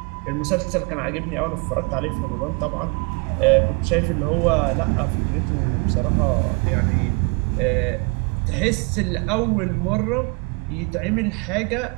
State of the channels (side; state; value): left; quieter; 32.1 dB